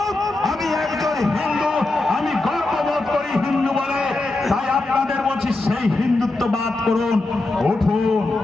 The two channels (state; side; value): quieter; right; 3.0 dB